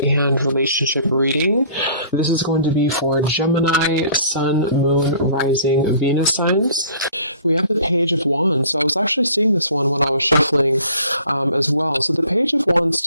relationship reading. This is going to be for Gemini, Sun, Moon, Rising, Venus signs. We have the Page of Wands. So I was actually seeing this one when I was shuffling as well. So the Page of Wands,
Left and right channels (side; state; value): both; inverted; correlation -0.51